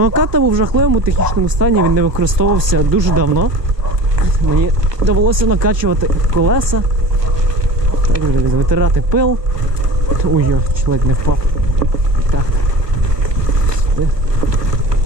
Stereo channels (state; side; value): late; left; 1.2 ms